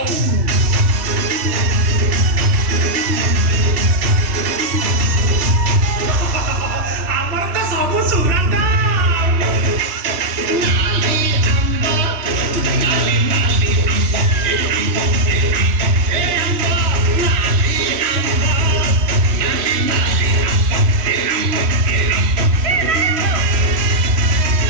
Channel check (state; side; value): late; left; 3.1 ms